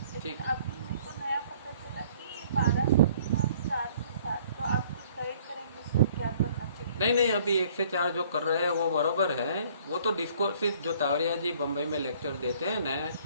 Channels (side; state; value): both; inverted; correlation -0.57